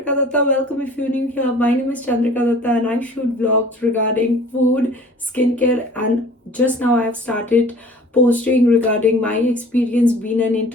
Datta. Welcome if you're new here. My name is Chandrika Datta and I shoot vlogs regarding food, skincare, and just now I have started posting regarding my experience being an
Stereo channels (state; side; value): normal; both; correlation 0.48